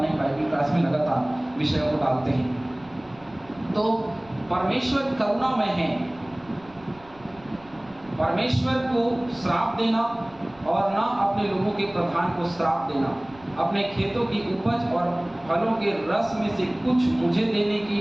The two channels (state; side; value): noise; right; rumble, 25 dB below the sound